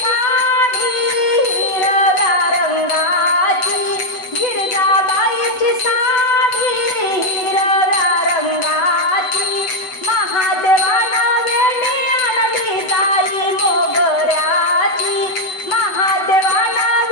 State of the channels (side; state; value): right; late; 7.9 ms